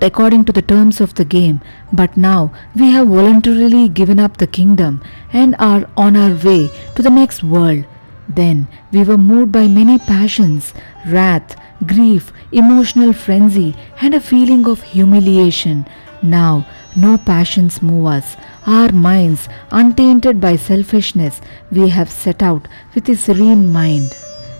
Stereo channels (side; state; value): both; inverted; correlation -1.00